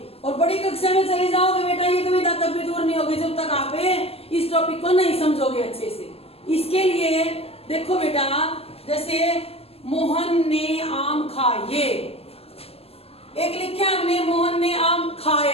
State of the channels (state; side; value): late; right; 0.29 ms